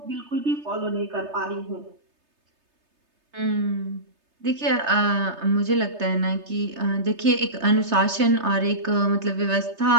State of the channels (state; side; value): late; left; 3.3 ms